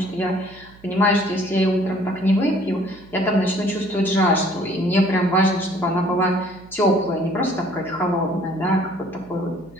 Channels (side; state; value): right; noise; hum, 24 dB below the sound